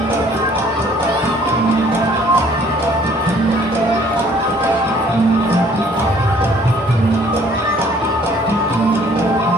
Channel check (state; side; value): normal; both; correlation 0.58